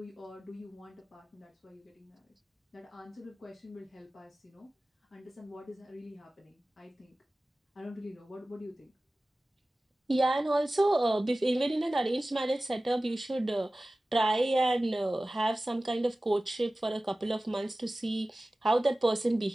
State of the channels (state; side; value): normal; both; correlation 0.97